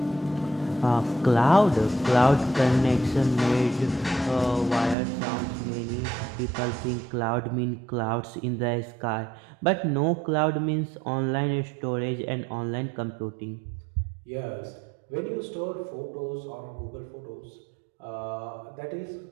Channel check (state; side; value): drops out; left; at 5.0 s